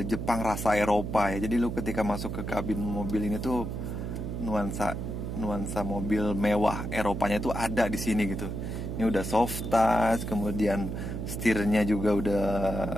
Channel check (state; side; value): noise; right; hum, 4 dB below the sound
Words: Jepang rasa Eropa ya. Jadi lu ketika masuk ke kabin mobil ini tuh nuansa mobil mewah Eropanya tuh ada di sini gitu. Ini udah soft touch, kemudian setirnya juga udah